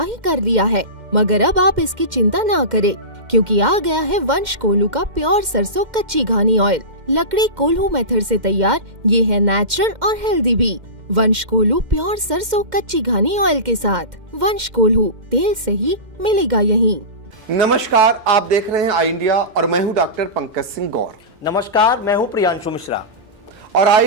ही कर लिया है, मगर अब आप इसकी चिंता ना करें, क्योंकि आ गया है वंश कोल्हू का प्योर सरसों कच्ची घानी ऑयल। लकड़ी कोल्हू मेथड से तैयार, ये है नेचुरल और हेल्दी भी। वंश कोल्हू प्योर सरसों कच्ची घानी ऑयल के साथ। वंश कोल्हू, तेल सही मिलेगा यहीं। नमस्कार, आप देख रहे हैं आई इंडिया और मैं हूं डॉक्टर पंकज सिंह गौर। नमस्कार, मैं हूं प्रियांशु मिश्रा और आई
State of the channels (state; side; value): late; left; 2.1 ms